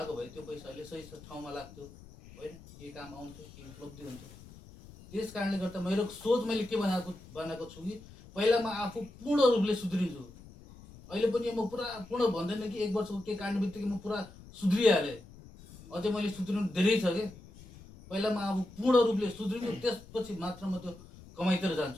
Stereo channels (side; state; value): left; noise; rumble, 19 dB below the sound